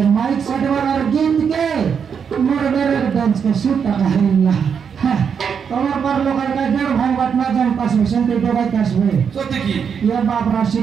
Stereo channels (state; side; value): quieter; left; 6.9 dB